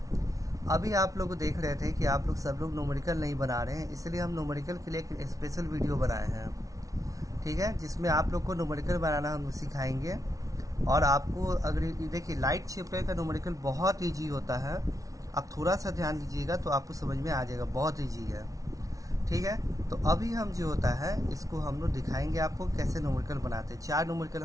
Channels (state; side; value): late; left; 0.17 ms